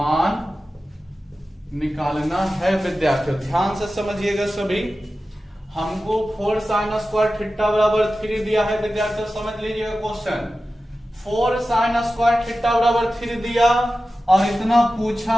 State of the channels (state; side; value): normal; both; correlation 0.94